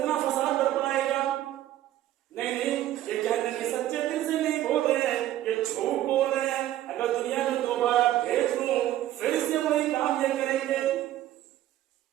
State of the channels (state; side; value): quieter; left; 13.3 dB